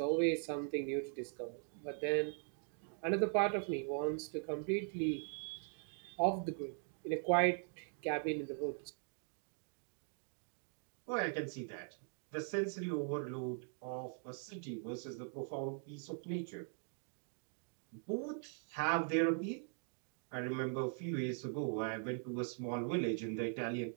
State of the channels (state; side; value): silent; left; 50 dB below the other